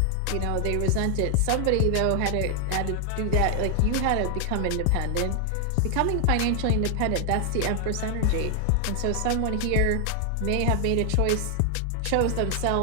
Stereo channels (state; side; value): different; both; correlation 0.00